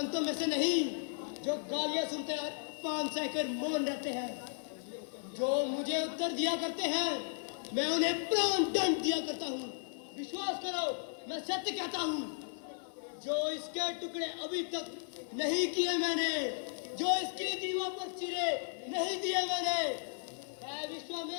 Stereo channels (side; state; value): right; silent; 54 dB below the other